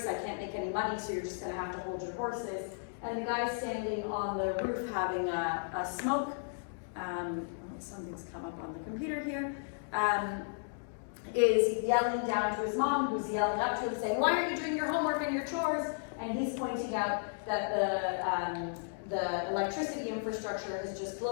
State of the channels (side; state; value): right; silent; digital silence